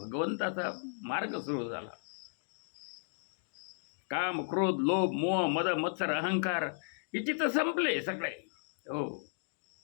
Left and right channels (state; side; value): silent; right; digital silence